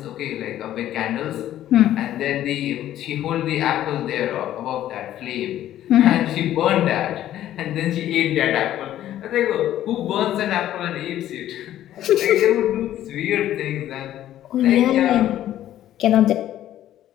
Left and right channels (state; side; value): quieter; right; 12.5 dB